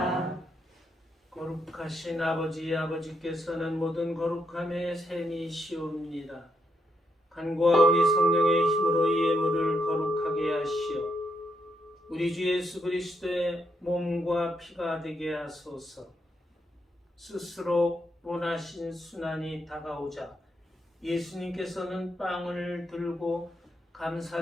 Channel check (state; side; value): normal; both; correlation 0.79